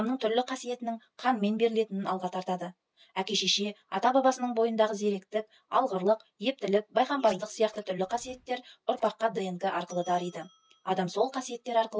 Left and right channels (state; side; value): identical; both; correlation 1.00